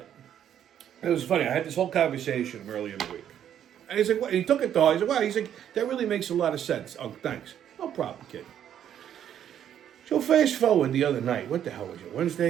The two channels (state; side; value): quieter; left; 10.0 dB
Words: it was funny. I had this whole conversation earlier in the week. And he's like, what? He took it to heart. He's like, wow. He's like, that really makes a lot of sense. Oh, thanks. No problem, kid. So fast forward the other night. What the hell was it?